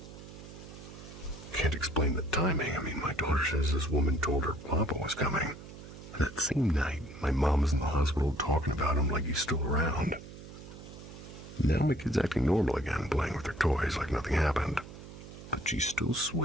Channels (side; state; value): right; noise; hum, 15 dB below the sound